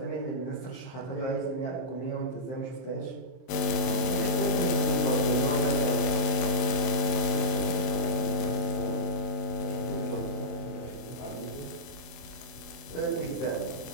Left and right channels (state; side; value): late; right; 24 ms